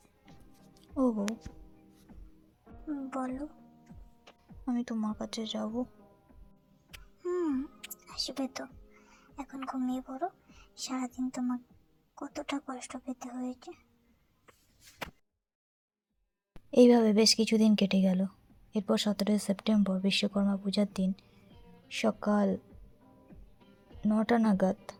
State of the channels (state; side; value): identical; both; correlation 1.00